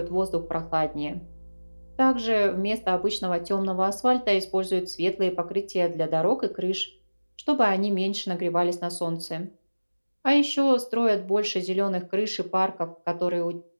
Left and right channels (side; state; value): both; inverted; correlation -1.00